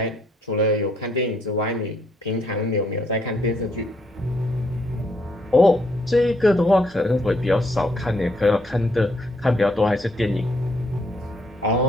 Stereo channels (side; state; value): both; normal; correlation 0.71